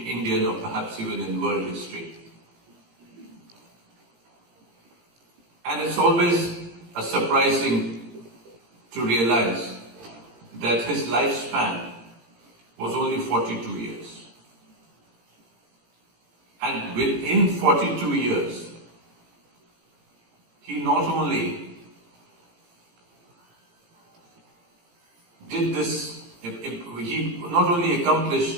or perhaps even in world history. And it's always surprising to realize that his lifespan was only 42 years. And within 42 years, he not only did this, he not only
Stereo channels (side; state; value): left; late; 17 ms